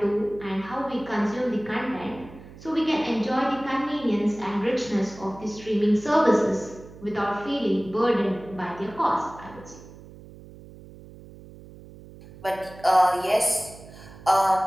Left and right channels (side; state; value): right; noise; hum, 18 dB below the sound